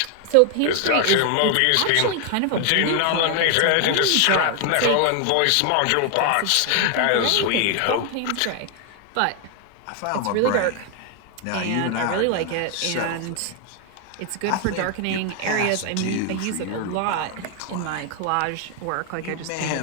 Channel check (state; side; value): different; both; correlation 0.00